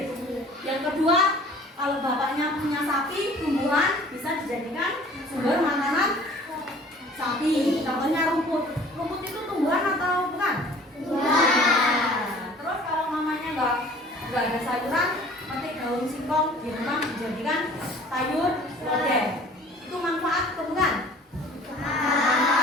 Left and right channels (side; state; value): both; normal; correlation 0.49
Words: Yang kedua, kalau bapaknya punya sapi, tumbuhan bisa dijadikan sumber makanan sapi. Contohnya rumput. Rumput itu tumbuhan atau bukan? Tumbuhan. Terus kalau mamanya nggak ada sayuran, petik daun singkong di rumah dijadikan sayur lodeh. Itu manfaat atau bukan?